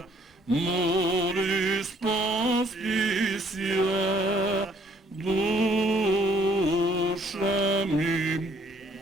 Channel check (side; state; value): both; normal; correlation 0.63